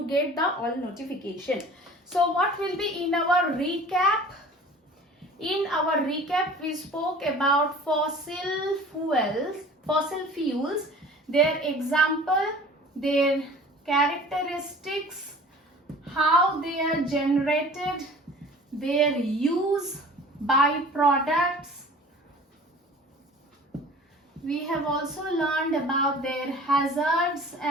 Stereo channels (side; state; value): both; normal; correlation 0.44